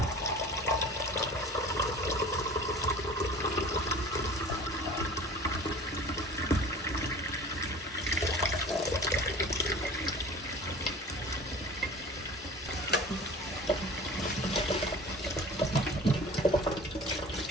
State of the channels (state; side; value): normal; both; correlation 0.42